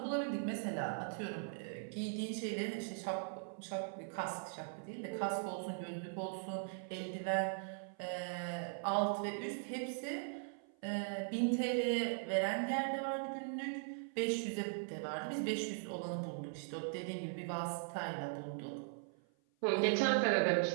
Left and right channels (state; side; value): silent; left; 51 dB below the other